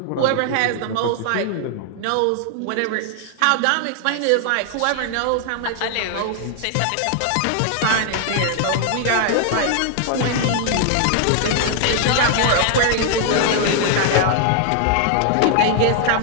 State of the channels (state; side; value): different; both; correlation 0.00